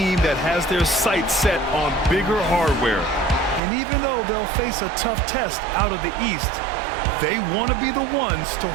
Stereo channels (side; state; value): left; drops out; at 3.6 s